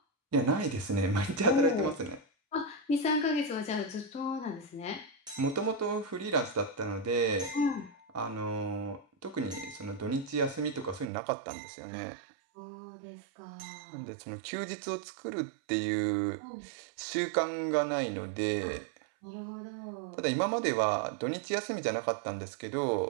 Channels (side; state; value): left; drops out; at 11.1 s